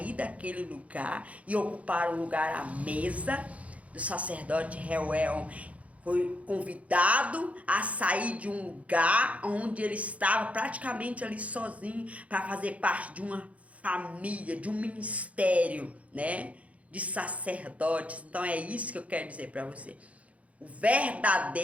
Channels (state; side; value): late; left; 0.066 ms